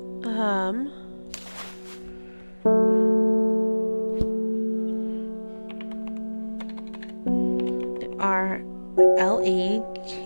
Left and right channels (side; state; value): both; inverted; correlation -1.00